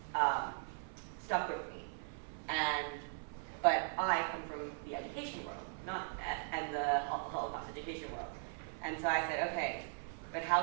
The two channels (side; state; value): left; silent; 52 dB below the other